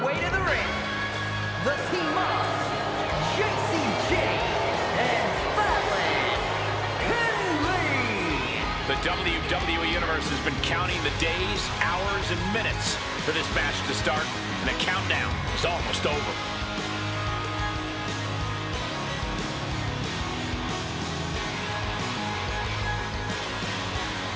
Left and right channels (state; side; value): identical; both; correlation 1.00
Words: way to the ring, the team of JCJ and Fallon Henley. The WWE Universe has been counting the days, hours, and minutes for this match to start, and the countdown is almost over.